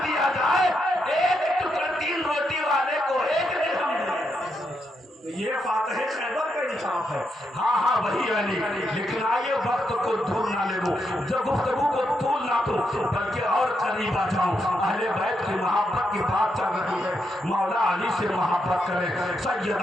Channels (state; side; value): normal; both; correlation 0.81